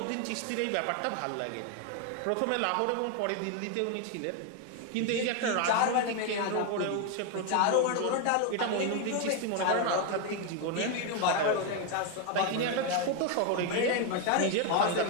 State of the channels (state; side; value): different; both; correlation 0.01